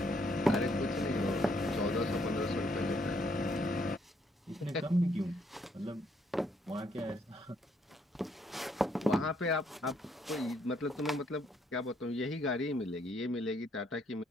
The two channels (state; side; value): normal; both; correlation 0.71